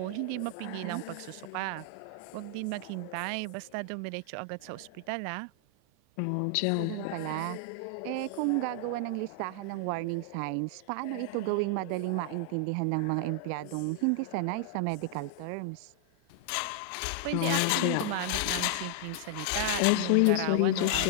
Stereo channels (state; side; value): different; both; correlation 0.00